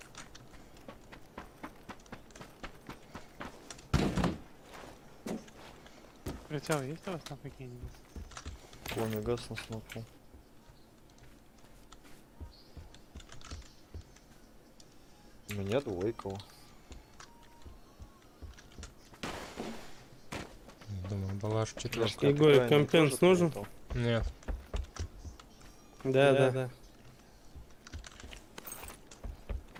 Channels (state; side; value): identical; both; correlation 1.00